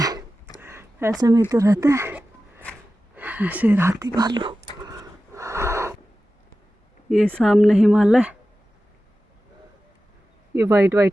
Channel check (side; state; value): both; normal; correlation 0.94